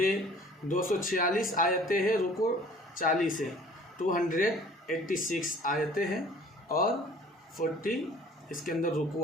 246 آیتیں ہیں، رکوع 40 ہے. 286 آیتیں ہیں اور 40 اس کے اندر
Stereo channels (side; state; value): both; normal; correlation 0.51